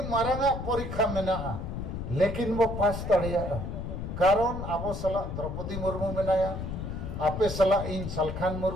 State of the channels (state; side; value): noise; left; rumble, 6 dB below the sound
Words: मारंगा परीक्षा मेना लेकिन वो पास तड़िया कारण आबो सला द्रौपदी मुर्मू मेनाया आपे सला इन सलखान